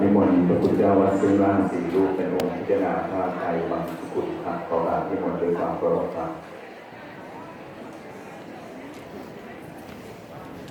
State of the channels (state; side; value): identical; both; correlation 1.00